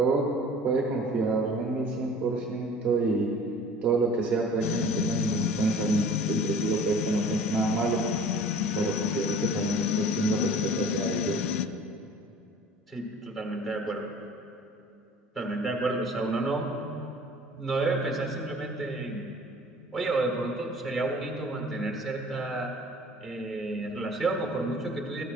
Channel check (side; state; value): both; normal; correlation 0.46